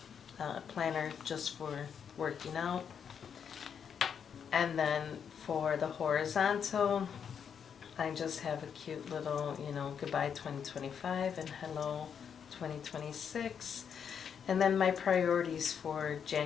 planner just for working out. And then for the horizontal, I just have a cute little, you know, goodbye 2025 and hello 2026. And then my priorities for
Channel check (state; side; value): quieter; right; 7.5 dB